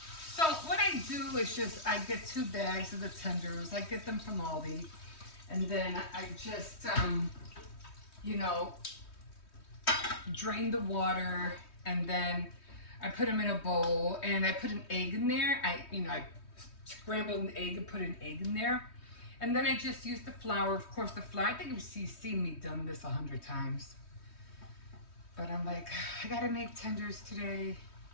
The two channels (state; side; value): late; right; 3.2 ms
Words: So what I do is just, I get 2 bags of the tenders. I get them from Aldi. And then I just, you know, drain the water, and then I put them in a bowl, and I put an egg in there. I scrambled an egg and put an egg in there. And then I just use the flour. Of course, the flour, I think you've seen me done this 100 times. But I'm like, I gotta make tenders today.